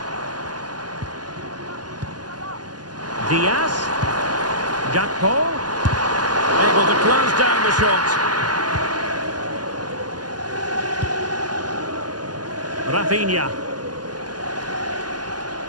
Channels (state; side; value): late; left; 0.70 ms